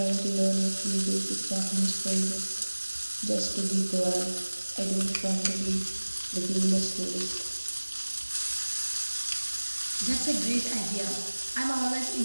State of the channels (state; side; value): inverted; both; correlation -1.00